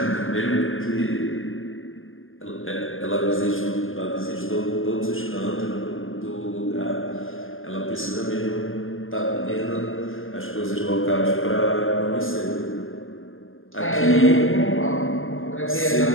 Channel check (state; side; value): late; right; 0.59 ms